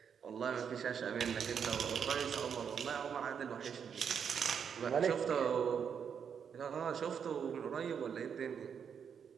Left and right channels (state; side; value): quieter; left; 7.3 dB